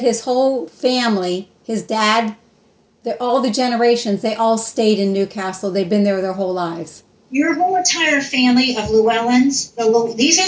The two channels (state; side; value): identical; both; correlation 1.00